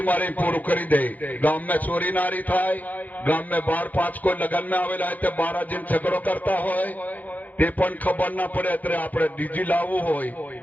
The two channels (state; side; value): late; right; 0.081 ms